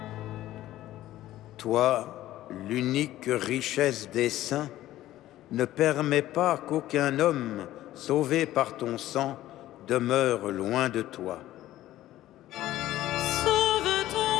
Toi, l'unique richesse des saints, ne permets pas qu'aucun homme sauvé par ton sang demeure loin de toi. Sauve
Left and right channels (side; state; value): right; quieter; 14.5 dB